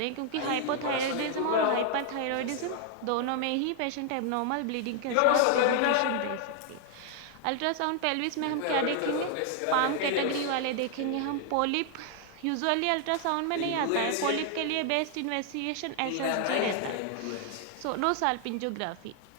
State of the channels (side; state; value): both; different; correlation 0.00